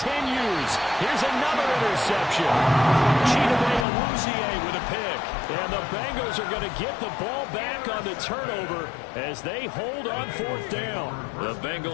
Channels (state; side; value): drops out; right; at 3.9 s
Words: Here's another interception. Chidobe with a pick. And the Bengals are going to get the ball back on the turnover as they hold on 4th down. The